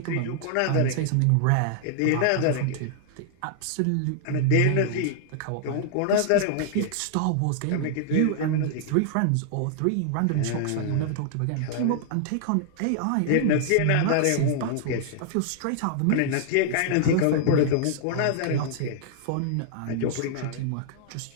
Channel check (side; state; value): both; different; correlation -0.01